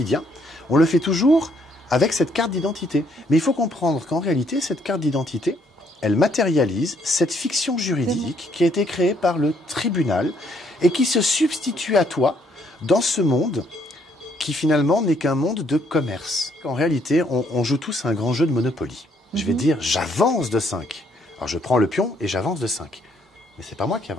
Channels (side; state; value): both; normal; correlation 0.68